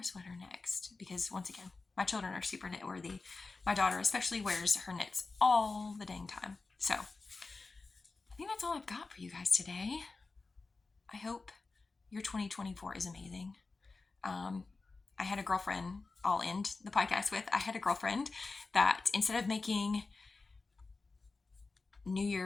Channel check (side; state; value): right; quieter; 3.8 dB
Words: sweater next, because once again, my children are super knit worthy. My daughter especially wears her knits all the dang time. So I think that's all I've got for you guys today. I hope your 2024 is amazing. I had a girlfriend, I'll end the podcast with, I had a girlfriend that instead of making New